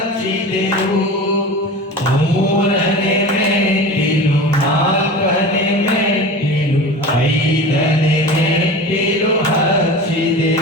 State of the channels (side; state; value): both; normal; correlation 0.33